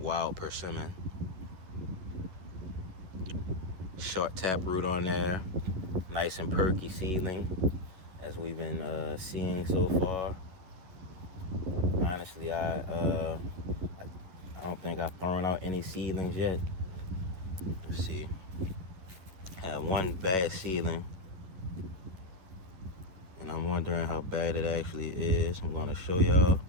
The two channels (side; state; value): left; late; 11 ms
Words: persimmon. Short taproot on there, nice and perky seedling, as we've been seeing so far. Honestly, I don't think I've thrown out any seedlings yet. Let's see. I had one bad seedling, and I'm wondering how bad it actually is. I'm going to show y'all.